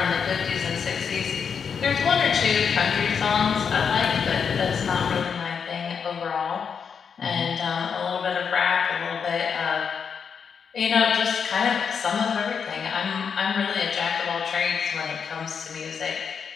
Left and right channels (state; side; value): quieter; right; 6.5 dB